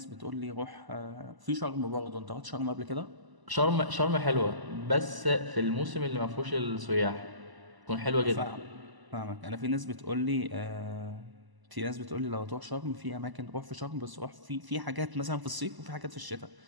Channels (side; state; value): left; late; 1.0 ms